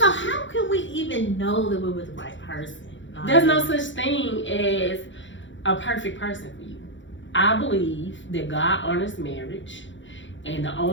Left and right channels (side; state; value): right; late; 0.55 ms